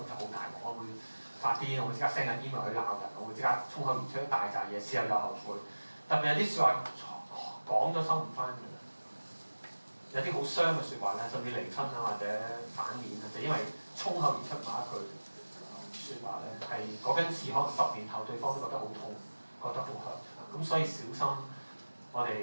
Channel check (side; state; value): both; inverted; correlation -1.00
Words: 就好大鑊，我會發癲，我會即刻 send 緊 email 去鬧人，我會即刻衝口而出一大扎嘢，事後又後悔。特別有啲説話講咗收唔翻嘅，有啲好傷嘅説話咧，甚至離婚啊或者反面啊，就因為衝口而出某一句説話咧，係嗰根刺可能10年後對方都覺得好痛，覺得好 hurt，咁所以小心我